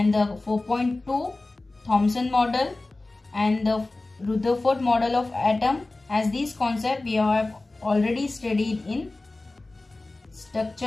the 4.2 Thomson model and the Rutherford model of atom, as these concepts we have already studied in structure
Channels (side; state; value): right; quieter; 3.1 dB